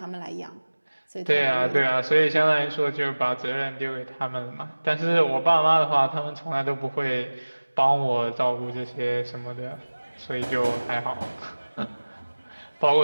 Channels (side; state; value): both; inverted; correlation -1.00